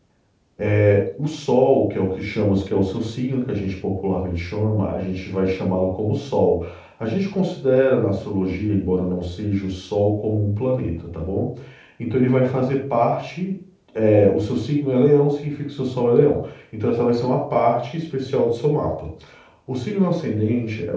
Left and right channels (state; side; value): identical; both; correlation 1.00